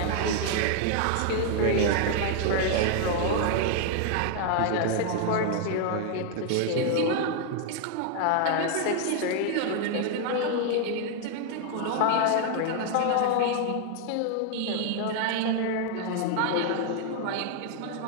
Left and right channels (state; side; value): different; both; correlation 0.00